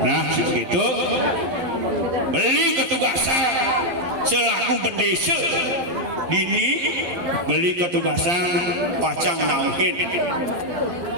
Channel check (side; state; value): left; late; 11 ms